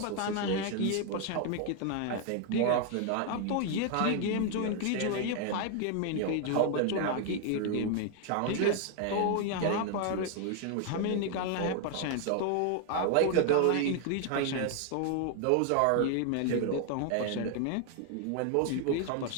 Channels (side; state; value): both; different; correlation 0.00